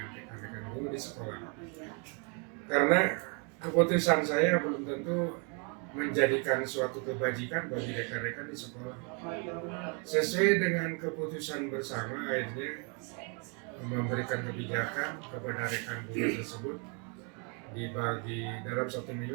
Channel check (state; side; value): quieter; left; 36.3 dB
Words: rekan-rekan guru di sekolah. Karena keputusan saya belum tentu menjadikan suatu kebajikan bagi rekan-rekan di sekolah. Sesuai dengan keputusan bersama, akhirnya memberikan kebijakan kepada rekan guru tersebut dibagi dalam satu